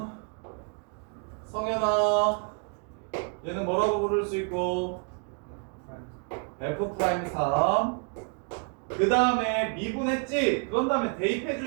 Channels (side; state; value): left; quieter; 39.2 dB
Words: 성현아, 얘는 뭐라고 부를 수 있고 f'3. 그 다음에 미분했지? 그런 다음에 대입해